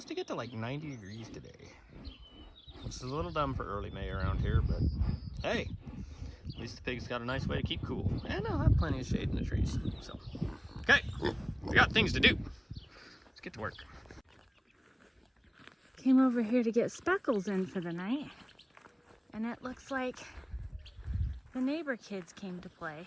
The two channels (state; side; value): identical; both; correlation 1.00